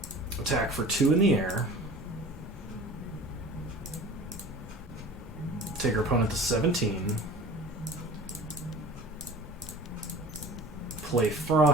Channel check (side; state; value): both; normal; correlation 0.41